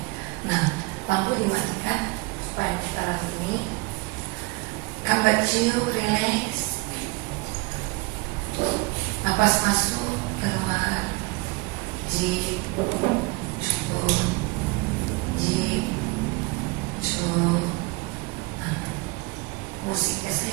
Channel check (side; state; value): left; quieter; 25.0 dB